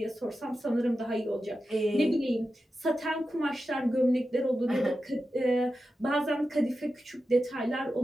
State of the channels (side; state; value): both; normal; correlation 0.91